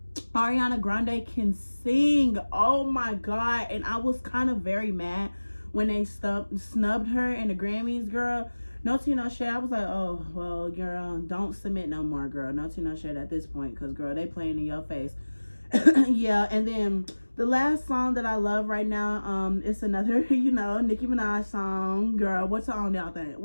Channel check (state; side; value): inverted; both; correlation -1.00